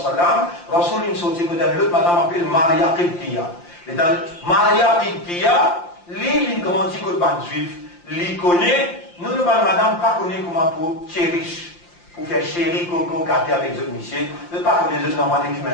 Rasoul il sortit que dans l'autre, madame appelle Maria Qibtiya. Et dans Maria Qibtiya, lui, il grandit que le ban juif. Il connaît, nous, le ban madame, pas connaît comment pour chérish, pour faire chéri, coco, gâter avec les autres monsieur. Je ne pas connaître les autres normaux qui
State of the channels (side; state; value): right; late; 5.7 ms